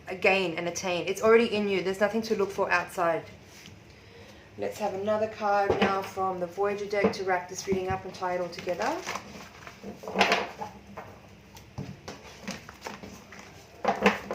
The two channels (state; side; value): identical; both; correlation 1.00